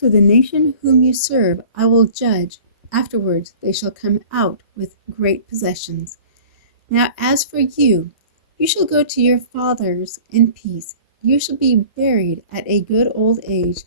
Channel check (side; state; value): both; inverted; correlation -0.44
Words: the nation whom you serve I will judge. Afterwards they shall come out with great possessions. Now as for you, you shall go to your fathers in peace. You shall be buried at a good old age.